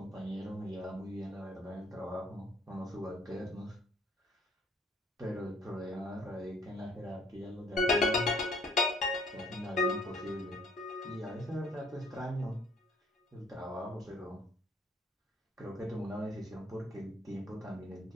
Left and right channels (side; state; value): both; normal; correlation 0.61